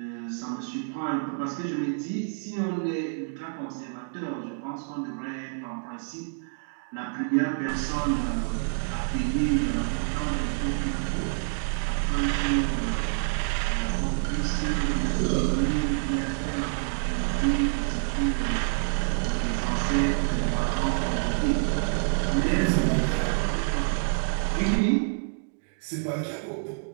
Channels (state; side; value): silent; left; 60 dB below the other